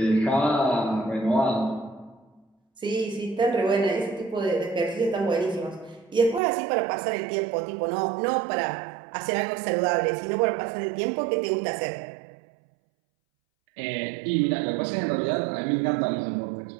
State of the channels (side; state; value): left; drops out; at 6.4 s